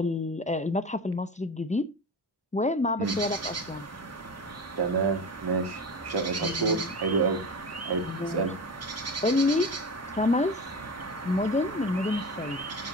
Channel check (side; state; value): both; normal; correlation 0.29